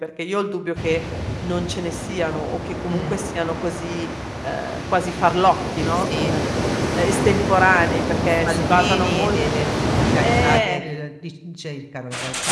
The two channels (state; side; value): identical; both; correlation 1.00